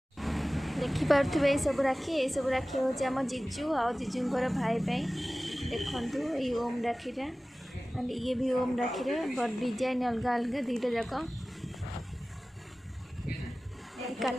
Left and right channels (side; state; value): both; normal; correlation 0.97